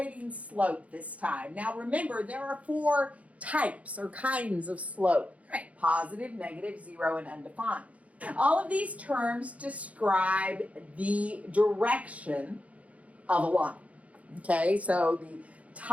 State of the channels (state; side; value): late; left; 0.067 ms